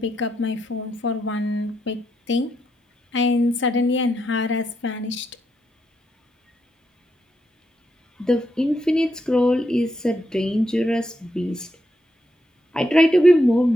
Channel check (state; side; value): normal; both; correlation 0.81